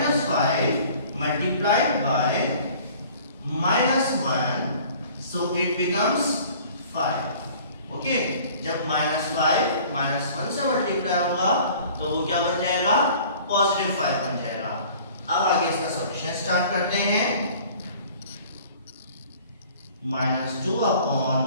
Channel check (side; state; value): both; inverted; correlation -0.49